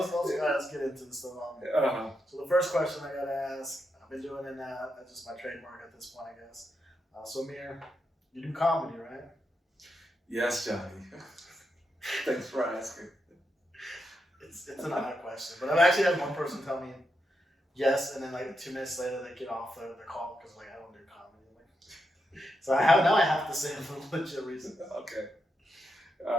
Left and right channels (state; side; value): normal; both; correlation 0.84